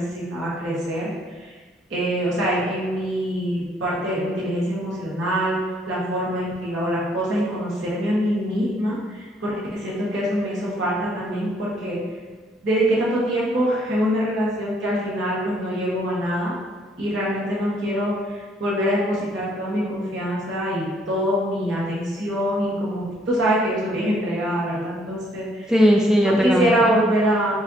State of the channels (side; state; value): both; normal; correlation 0.67